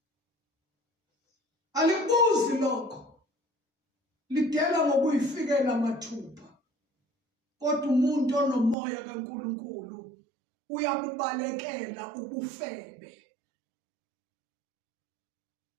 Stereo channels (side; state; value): left; drops out; at 8.8 s